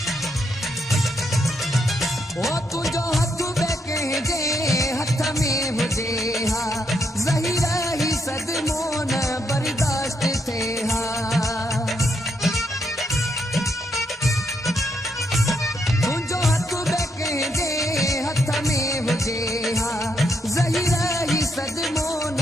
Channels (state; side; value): normal; both; correlation 0.78